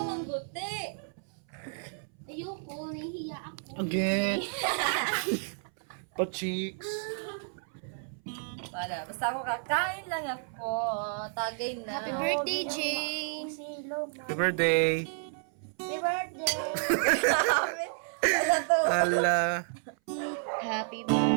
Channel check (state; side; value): silent; left; 57 dB below the other